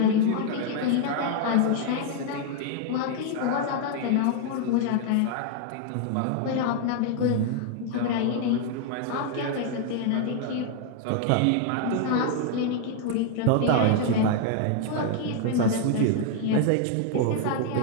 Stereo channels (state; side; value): different; both; correlation 0.00